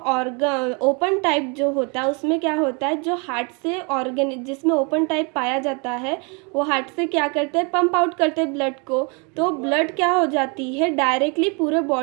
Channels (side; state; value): left; quieter; 33.0 dB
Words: ओपन टाइप जो होता है उसमें क्या होता है, जो हार्ट से ऑर्गन जिसमें ओपन टाइप पाया जाता है वो हार्ट से क्या करते हैं, पंप आउट करते हैं ब्लड को। तो ब्लड क्या हो जाती है, डायरेक्टली पूरे